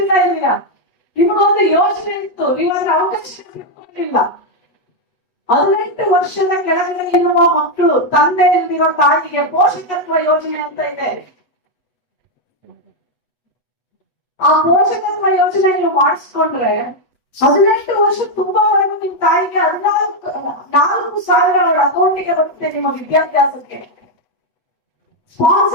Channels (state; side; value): late; right; 8.1 ms